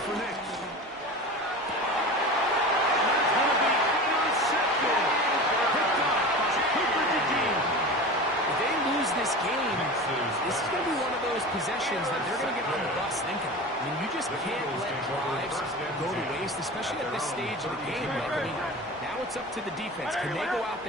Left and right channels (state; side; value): normal; both; correlation 0.32